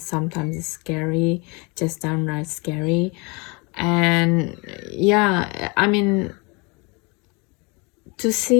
Sometimes it's scary, just downright scary. And yeah, I mean, to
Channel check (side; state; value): right; quieter; 29.6 dB